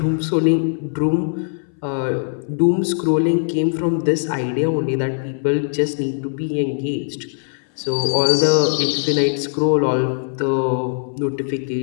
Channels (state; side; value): silent; right; 62 dB below the other